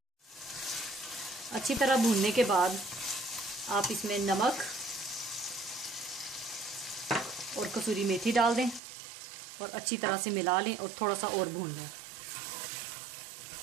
अच्छी तरह भूनने के बाद आप इसमें नमक और कसूरी मेथी डाल दें और अच्छी तरह से मिला लें और थोड़ा सा और भून लें।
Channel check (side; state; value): left; drops out; at 8.8 s